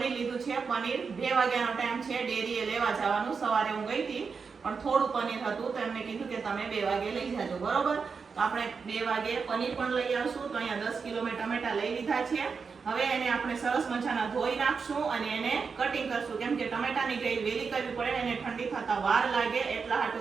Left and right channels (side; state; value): left; quieter; 5.4 dB